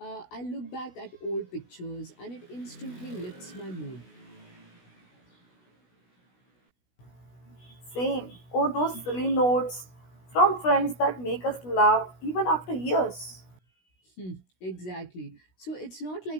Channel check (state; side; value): late; right; 16 ms